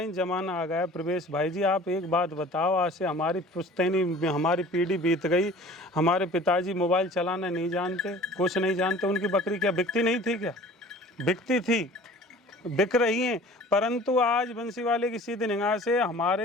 जमाना आ गया प्रवेश भाई जी, आप एक बात बताओ, आज से हमारी पुश्तैनी, हमारी पीढ़ी बीत गई, हमारे पिताजी मोबाइल चलाना नहीं जानते, कुछ नहीं जानते, उनकी बकरी क्या बिकती नहीं थी? क्या बिकती थी, बिक रही हैं। परंतु आज बंसी वाले की सीधी निगाह से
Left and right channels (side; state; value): both; normal; correlation 0.46